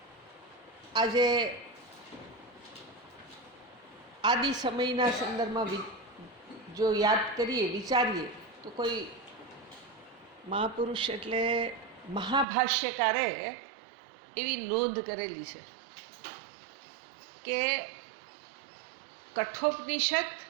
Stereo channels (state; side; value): drops out; left; at 12.5 s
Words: આજે આદિ સમયના સંદર્ભમાં જો યાદ કરીએ, વિચારીએ તો કોઈ મહાપુરુષ એટલે મહાભાષ્યકારે એવી નોંધ કરેલી છે કે કઠોપનિષદ